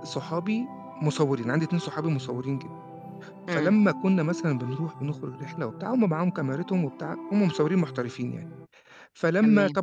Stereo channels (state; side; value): identical; both; correlation 1.00